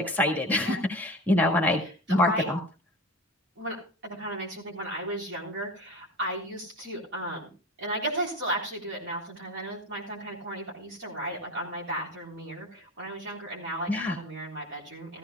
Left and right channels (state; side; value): normal; both; correlation 0.31